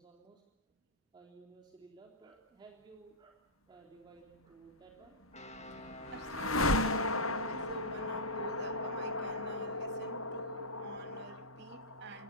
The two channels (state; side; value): normal; both; correlation -0.12